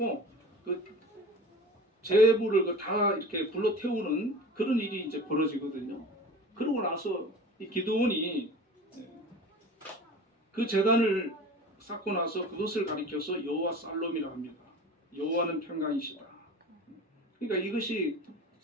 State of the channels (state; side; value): normal; both; correlation 0.37